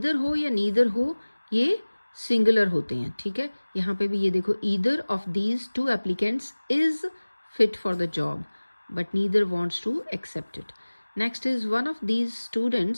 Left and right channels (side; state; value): both; inverted; correlation -1.00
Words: हो या नीदर हो ये सिंगुलर होते हैं, ठीक है। यहाँ पे भी ये देखो, either of these two applicants is fit for the job but neither wants to accept it. Next is one of these